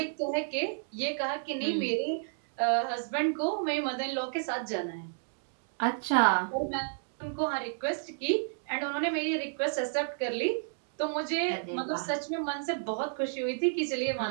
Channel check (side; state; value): left; silent; digital silence